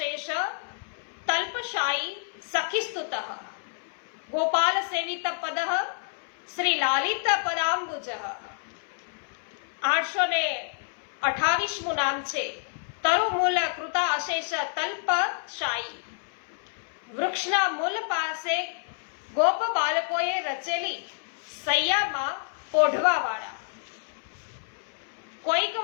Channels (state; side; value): silent; right; 59 dB below the other